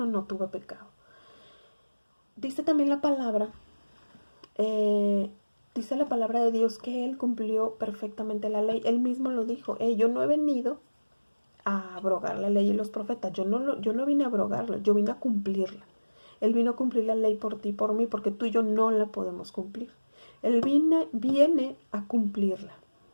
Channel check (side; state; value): both; inverted; correlation -1.00